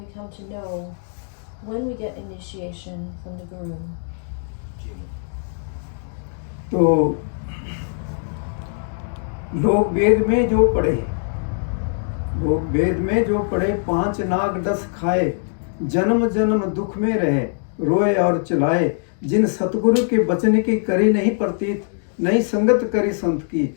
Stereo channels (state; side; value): silent; right; digital silence